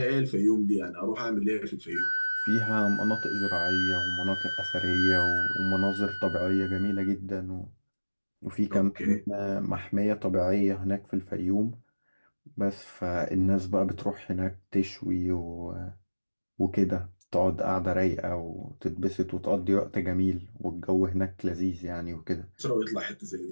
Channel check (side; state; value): both; inverted; correlation -1.00